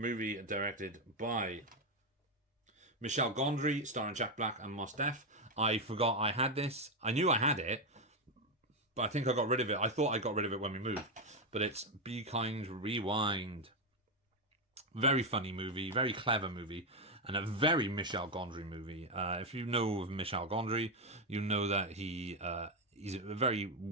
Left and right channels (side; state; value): both; normal; correlation 0.07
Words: directed by Michel Gondry, starring Jack Black and Mos Def. I forgot I had this. I knew I had it, but I think I got rid of it. I thought I got rid of it when we moved. But it's Be Kind, Rewind. Very funny movie. Very clever movie. And a very Michel Gondry movie. If you know of Michel Gondry, you know that he's a very